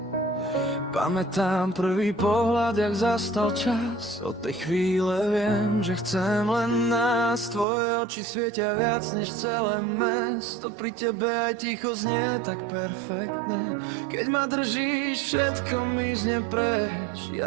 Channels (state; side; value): drops out; left; at 7.7 s